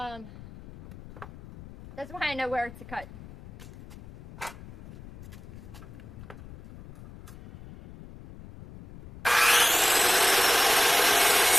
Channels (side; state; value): left; noise; rumble, 17 dB below the sound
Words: why I know where to cut.